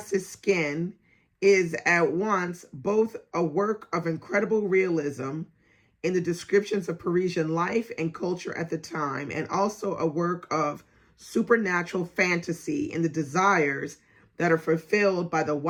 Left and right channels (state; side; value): identical; both; correlation 1.00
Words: skin is at once both a work of incredible realism in the descriptions of Parisian life and culture at the time, and also a work of supernatural fantasy in the desires that are fulfilled by the